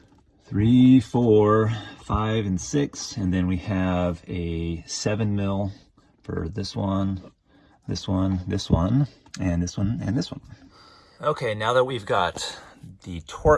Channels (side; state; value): both; identical; correlation 1.00